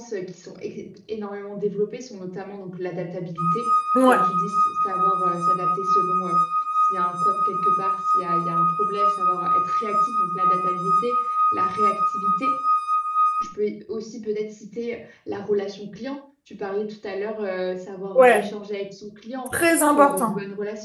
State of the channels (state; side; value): identical; both; correlation 1.00